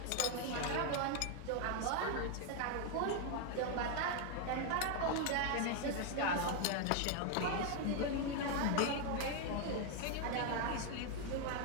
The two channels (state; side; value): different; both; correlation 0.01